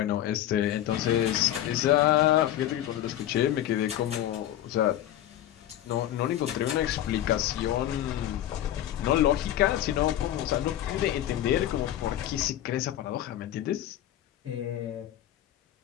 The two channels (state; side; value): quieter; right; 12.3 dB